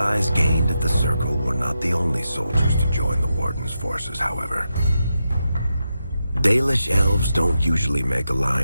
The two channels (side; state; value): both; inverted; correlation -0.87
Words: gained at the Circle were not the only soldiers to join the Warden's forces, however. Dalish elves don't usually make